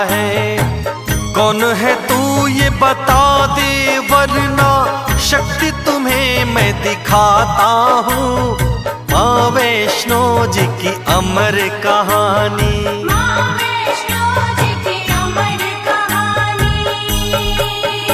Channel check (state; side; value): identical; both; correlation 1.00